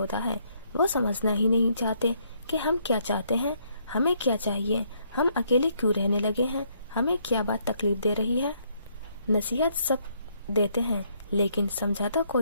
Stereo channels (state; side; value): inverted; both; correlation -0.70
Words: ہے۔ وہ سمجھنا ہی نہیں چاہتے کہ ہم کیا چاہتے ہیں، ہمیں کیا چاہیے، ہم اکیلے کیوں رہنے لگے ہیں، ہمیں کیا بات تکلیف دے رہی ہے۔ نصیحت سب دیتے ہیں، لیکن سمجھاتا